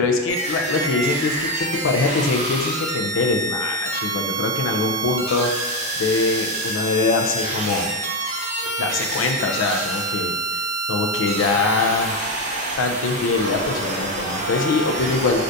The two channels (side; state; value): both; normal; correlation 0.09